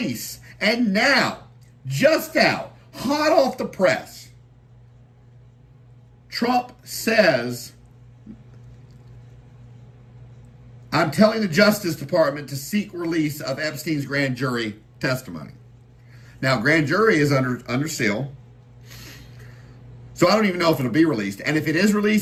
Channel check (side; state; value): both; identical; correlation 1.00